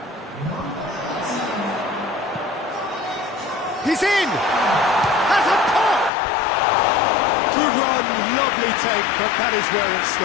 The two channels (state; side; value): drops out; right; at 6.1 s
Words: He's in! Has a pop! Good run, lovely take, but that is where it